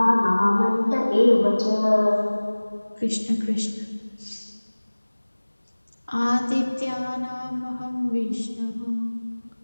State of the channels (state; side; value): inverted; both; correlation -1.00